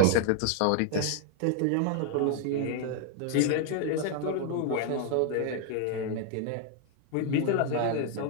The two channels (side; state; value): both; different; correlation 0.00